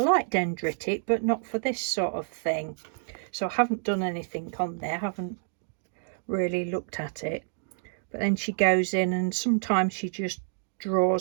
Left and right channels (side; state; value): left; silent; digital silence